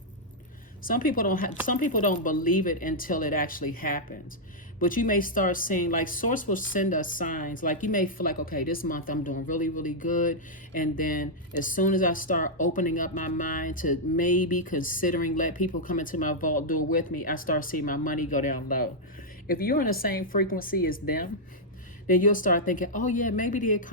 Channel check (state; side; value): normal; both; correlation -0.06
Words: Some people don't believe it until it actually happens. But you may start seeing, like, source will send us signs. Like, you may feel like, okay, this month I'm doing really, really good. And then as soon as I start opening up my mind to maybe considering let people come into my vault door with me, I start seeing my money go down low. If you're on the same frequency as them, then you'll start thinking, oh yeah, maybe the